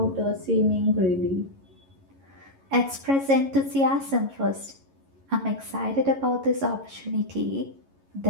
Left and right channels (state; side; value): late; left; 11 ms